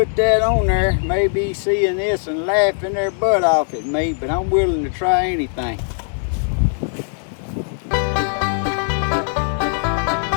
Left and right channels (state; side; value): silent; right; 61 dB below the other